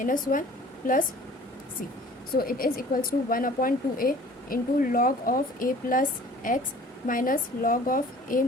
plus C. So it is equals to 1/2a into log of a plus X minus log of a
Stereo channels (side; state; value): both; normal; correlation 0.48